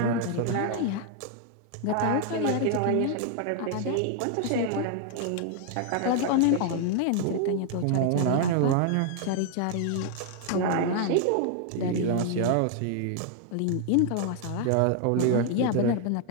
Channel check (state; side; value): different; both; correlation 0.00